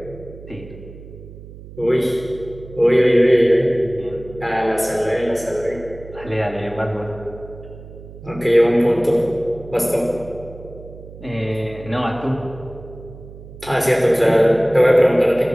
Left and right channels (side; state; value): right; noise; hum, 17 dB below the sound